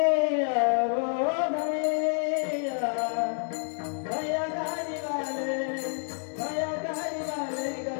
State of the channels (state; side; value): silent; right; 59 dB below the other